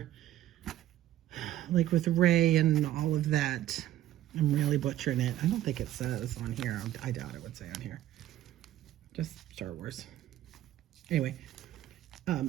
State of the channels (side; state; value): left; quieter; 13.3 dB